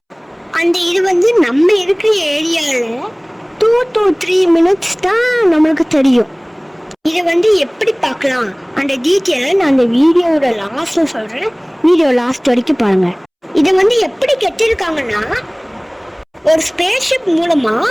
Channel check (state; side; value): identical; both; correlation 1.00